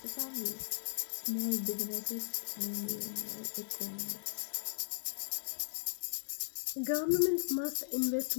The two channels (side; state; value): right; silent; digital silence